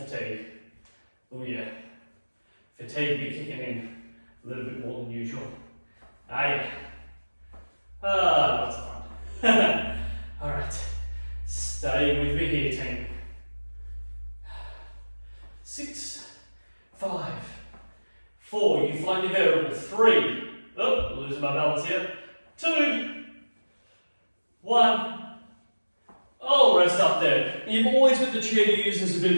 Oh yeah. Fatigue be kicking in a little bit more than usual. Yeah. Lots of fun. Alright. Stay with me here, team. 6, 5, 4, you find your variable. 3, losing my balance here. 2, 1, rest up there. You've always got the chair to use as a bit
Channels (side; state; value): both; inverted; correlation -1.00